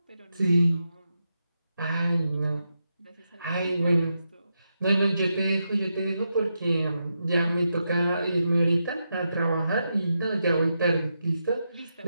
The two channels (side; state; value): both; inverted; correlation -0.86